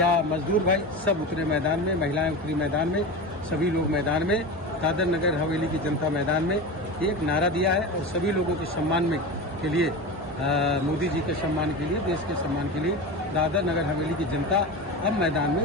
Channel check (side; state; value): both; normal; correlation 0.26